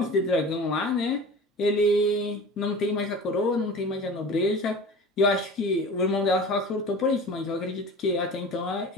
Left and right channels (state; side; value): normal; both; correlation 0.37